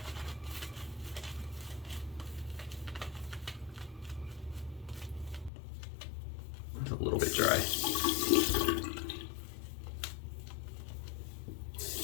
It's a little bit dry.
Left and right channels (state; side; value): drops out; right; at 5.5 s